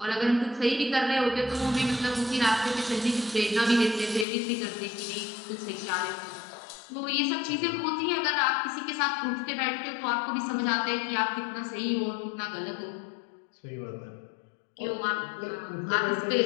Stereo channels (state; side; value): drops out; right; at 4.2 s